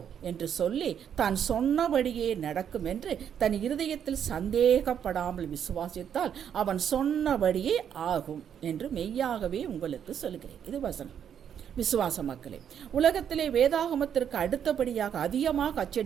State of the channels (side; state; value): left; quieter; 8.7 dB